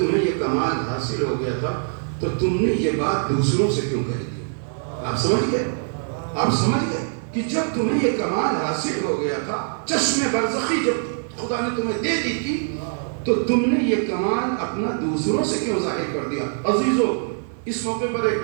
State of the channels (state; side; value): silent; left; digital silence